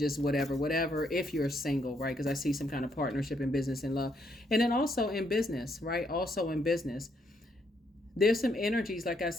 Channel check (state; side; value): normal; both; correlation 0.74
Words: whatever, if you're single, right? Because I see some kind of partnership in business and love. And then also in business, right? Also in business, there's some energies, like I